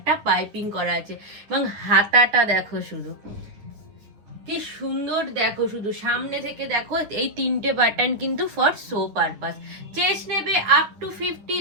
পাইপিং করা আছে এবং হাতাটা দেখো শুধু কি সুন্দর, দেখো শুধু সামনে থেকে দেখো, এই তিনটে বাটন কিন্তু ফর শো পারপাস। চেস্ট নেবে আপ টু 50,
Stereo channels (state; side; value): late; left; 9.8 ms